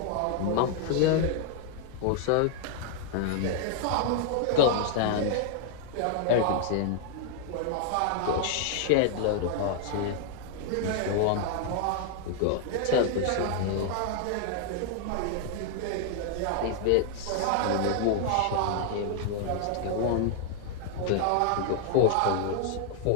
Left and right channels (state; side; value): different; both; correlation 0.00